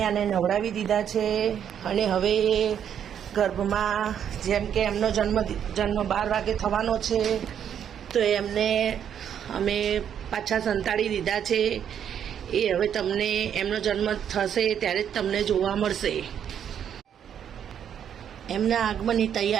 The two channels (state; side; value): quieter; left; 8.9 dB